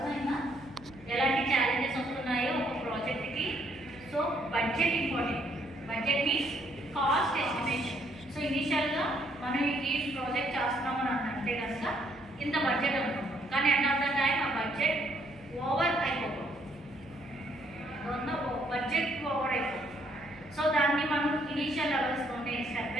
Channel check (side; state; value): right; noise; hum, 23 dB below the sound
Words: ఎలాంటి ఛాలెంజెస్ వస్తున్నాయో ఒక ప్రాజెక్ట్కి. So budget important. Budget means cost estimation. So ఇనిషియల్గా మనం ఈ ప్రాజెక్ట్ చేస్తున్నామని అంటే కనుక ఇంత బడ్జెట్ అనుకుంటాం, కానీ ఎండ్ ఆఫ్ ద టైం ఆ బడ్జెట్ ఓవర్ అయిపోతుంది, బడ్జెట్ ఓవర్ అయిపోతుంది. సో దాన్ని మనం ఇనిషియల్ లెవెల్స్లోనే స్టెప్